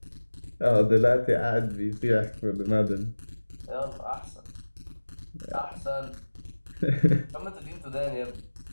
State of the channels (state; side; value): inverted; both; correlation -1.00